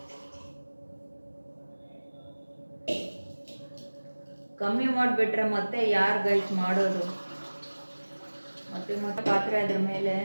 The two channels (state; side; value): inverted; both; correlation -1.00